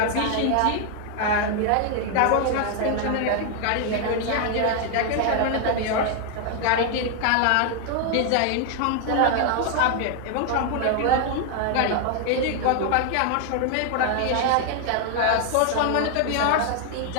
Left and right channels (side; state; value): both; different; correlation 0.00